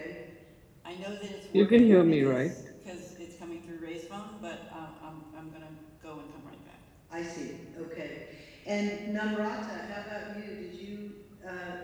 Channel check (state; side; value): identical; both; correlation 1.00